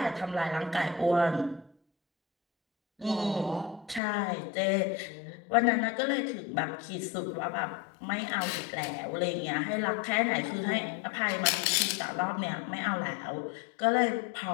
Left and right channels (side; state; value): right; drops out; at 4.0 s